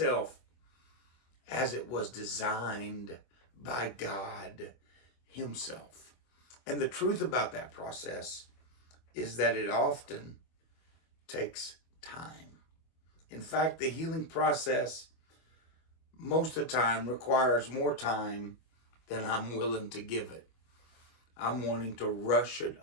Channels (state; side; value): late; right; 24 ms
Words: as it was designed by God himself. And the truth about that process is that it often takes time. In fact, the healing process most of the time requires more time than I'm willing to give it. I'm wanting to rush it